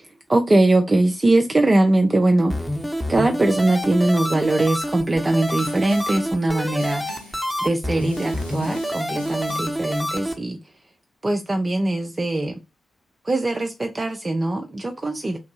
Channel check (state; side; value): normal; both; correlation 0.97